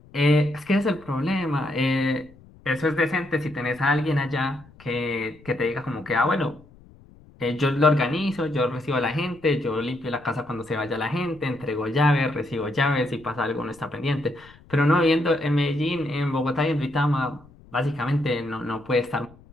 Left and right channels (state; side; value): noise; left; rumble, 24 dB below the sound